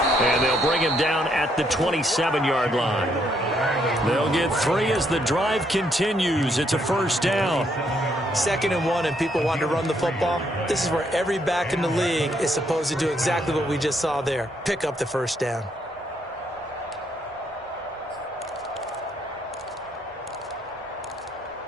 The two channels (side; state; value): both; normal; correlation 0.73